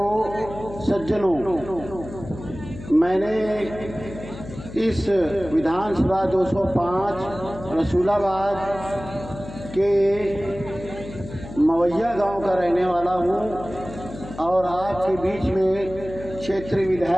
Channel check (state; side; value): noise; left; hum, 13 dB below the sound